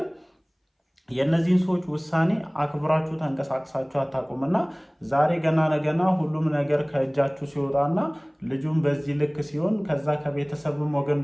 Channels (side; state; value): both; identical; correlation 1.00